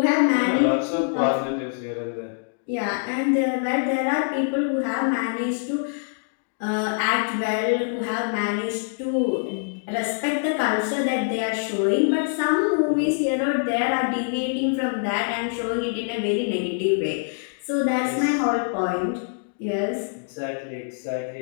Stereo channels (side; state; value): right; silent; digital silence